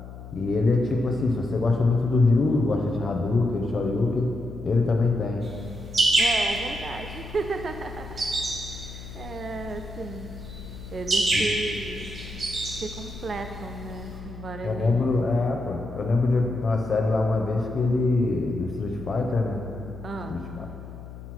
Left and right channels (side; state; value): left; noise; hum, 13 dB below the sound